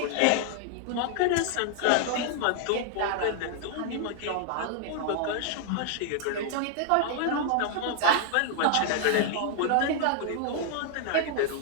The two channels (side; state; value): both; different; correlation 0.00